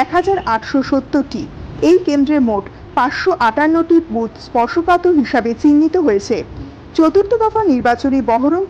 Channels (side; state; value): both; identical; correlation 1.00